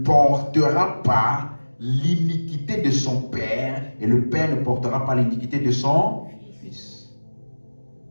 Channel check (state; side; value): inverted; both; correlation -1.00